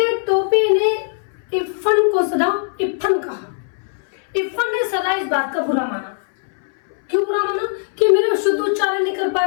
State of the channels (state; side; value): silent; right; 64 dB below the other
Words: हैं टोपी ने इफन को सदा इफन कहा। इफन ने सदा इस बात का बुरा माना। क्यों बुरा माना? कि मेरा शुद्ध उच्चारण नहीं कर पा